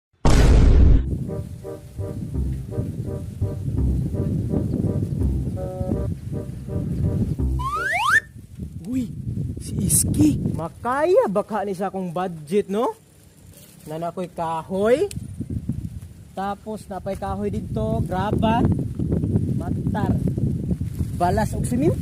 Uy, si Iski. Makaya baka ni sa akong budget, no? Na nakoy kahoy. Tapos napay kahoy dito, graba, matar. Balas og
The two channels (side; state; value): both; identical; correlation 1.00